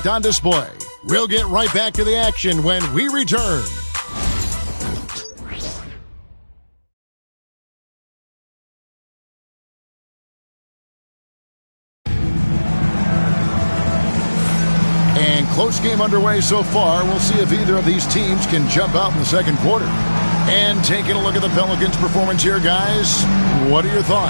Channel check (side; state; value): both; inverted; correlation -1.00